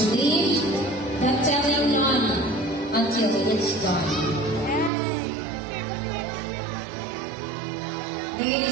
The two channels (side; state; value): left; drops out; at 4.9 s